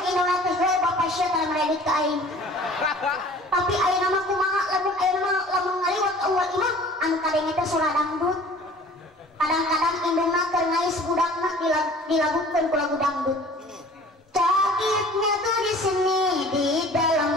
indungna teh bapak sia tara meredit ka aing. Tapi ayeuna mah kumaha lamun ngaliwat ka uwal imah anu kadenge teh surah dangdut. Kadang-kadang indungna keur ngais budakna dilagukeun ku lagu dangdut. Sakitnya tuh di sini di dalam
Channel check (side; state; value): both; normal; correlation 0.48